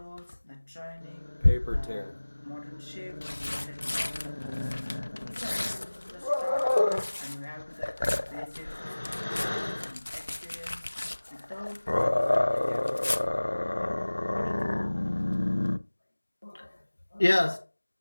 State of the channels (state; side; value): inverted; both; correlation -1.00